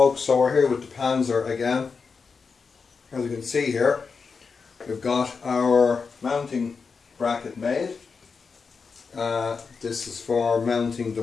so we're here with the Panzer again. As you can see here, we've got our mounting bracket made. This is for mounting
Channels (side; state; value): right; quieter; 5.2 dB